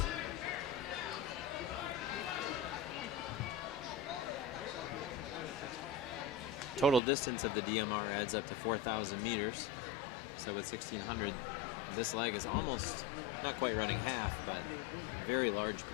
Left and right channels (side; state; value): right; drops out; at 7.0 s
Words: Total distance of the DMR adds up to 4,000 meters. So with 1,600, this leg is almost, not quite running half, but a very large